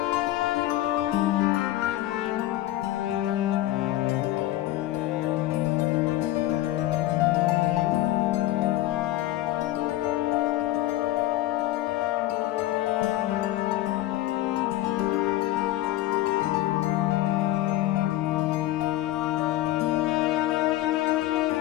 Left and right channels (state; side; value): quieter; right; 15.4 dB